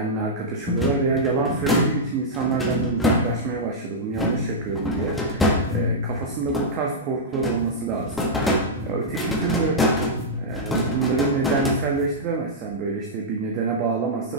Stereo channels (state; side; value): normal; both; correlation -0.09